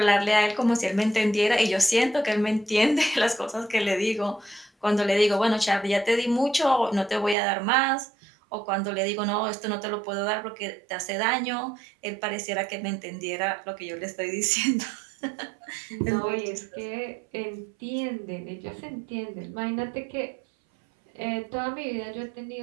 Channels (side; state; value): left; drops out; at 7.4 s